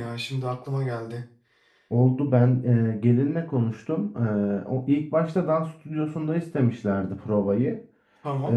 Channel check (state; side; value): identical; both; correlation 1.00